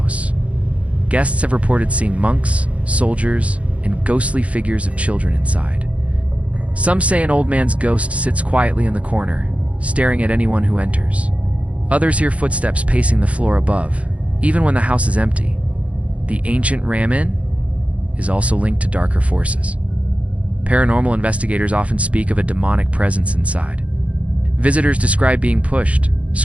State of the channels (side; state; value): left; late; 0.064 ms